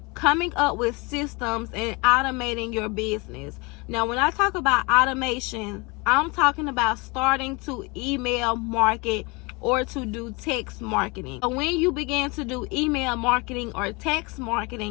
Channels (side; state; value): right; quieter; 27.3 dB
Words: coming up with systems and automating your business. Now, when I talk about automation, I'm talking about starting to email market or to do text marketing. So when you begin to do email marketing or text